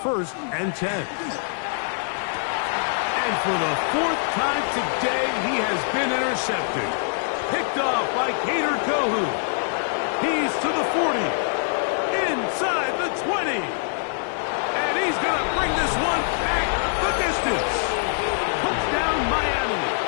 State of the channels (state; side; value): silent; right; digital silence